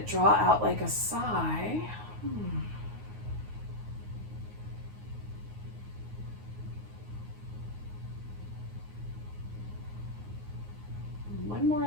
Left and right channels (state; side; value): late; left; 9.5 ms